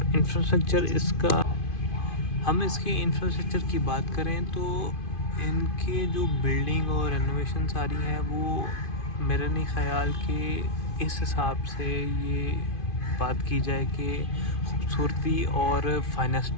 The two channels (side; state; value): right; late; 2.5 ms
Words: इंफ्रास्ट्रक्चर इसका। हम इसके इंफ्रास्ट्रक्चर की बात करें तो इनके जो बिल्डिंग और रेनोवेशन सारी है वो मेरे नहीं ख़्याल कि इस हिसाब से ये बात की जाए कि खूबसूरती और